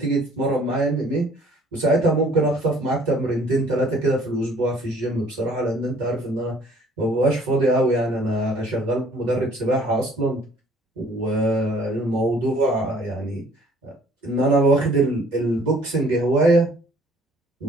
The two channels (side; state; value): both; normal; correlation 0.57